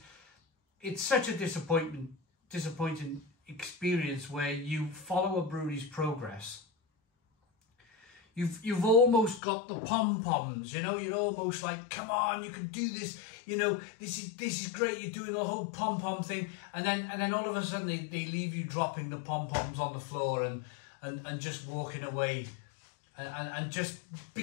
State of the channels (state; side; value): drops out; right; at 9.4 s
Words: it's such a disappointing experience where you follow a brewery's progress. You've almost got the pom-poms, you know, you're almost like, come on, you can do this, you know, this is great, you're doing the whole pom-pom thing, and then all of a sudden they leave you dropping the pom-poms on the floor and just walking away, and just